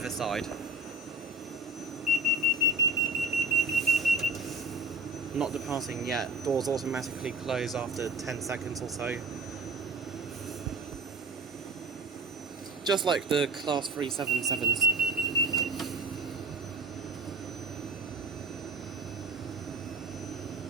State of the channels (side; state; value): left; quieter; 3.0 dB